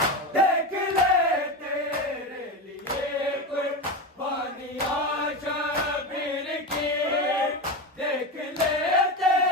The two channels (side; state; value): both; normal; correlation 0.19